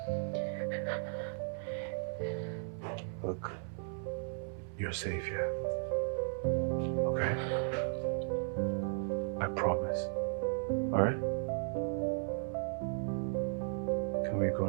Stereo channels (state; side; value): silent; left; 54 dB below the other